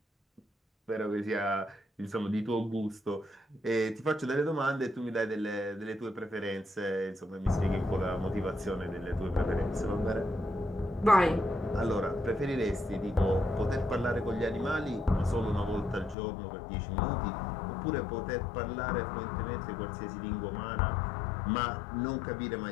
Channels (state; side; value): drops out; right; at 16.2 s